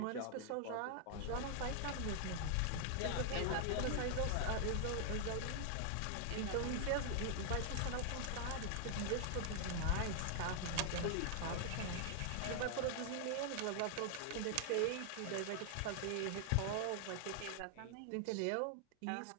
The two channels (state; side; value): different; both; correlation 0.00